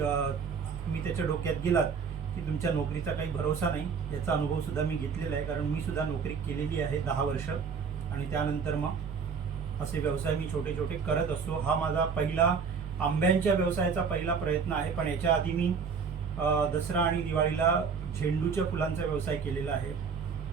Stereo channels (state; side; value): quieter; left; 5.8 dB